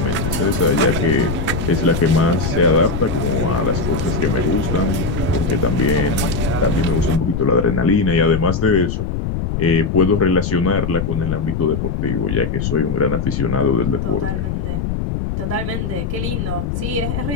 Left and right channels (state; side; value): noise; left; rumble, 2 dB below the sound